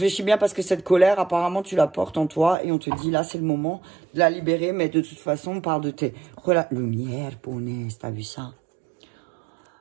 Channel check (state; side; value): drops out; left; at 2.6 s